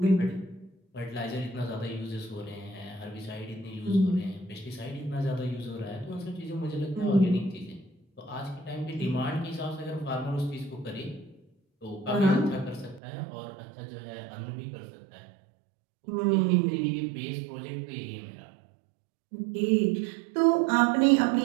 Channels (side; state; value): left; drops out; at 13.0 s